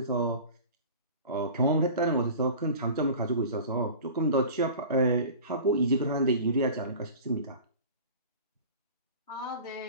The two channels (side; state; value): both; inverted; correlation -0.39